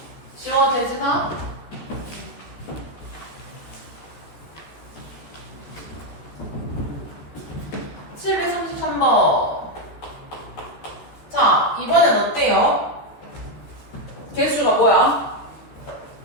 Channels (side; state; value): right; late; 14 ms